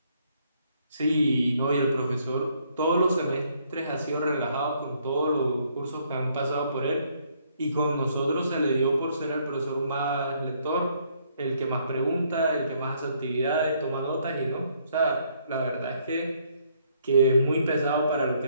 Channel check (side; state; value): both; inverted; correlation -0.68